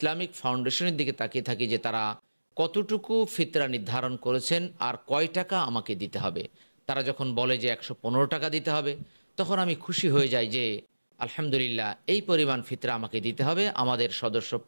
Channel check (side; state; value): both; inverted; correlation -1.00